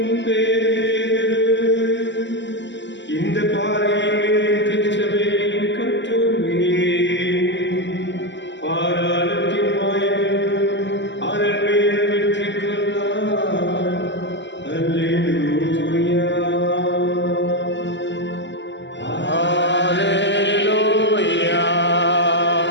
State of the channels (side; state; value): right; late; 0.53 ms